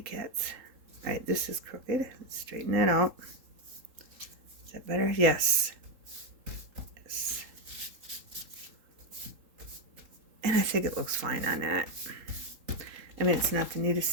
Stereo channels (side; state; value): left; late; 3.8 ms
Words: cats. All right, this is crooked. Let's straighten that out. Is that better? Yes. Yes. And I think it looks fine on that. I mean, it's not the